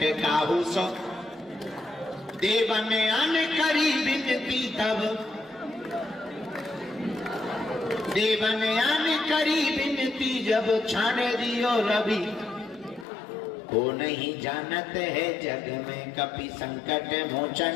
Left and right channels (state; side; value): drops out; right; at 13.1 s